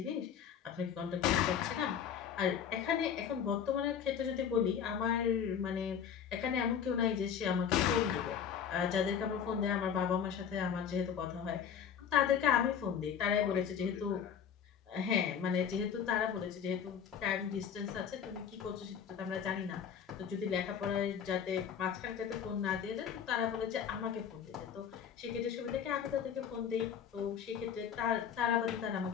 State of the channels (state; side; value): quieter; right; 8.0 dB